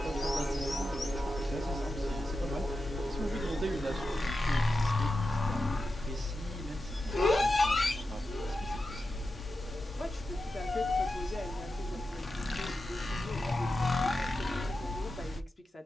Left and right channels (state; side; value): normal; both; correlation 0.90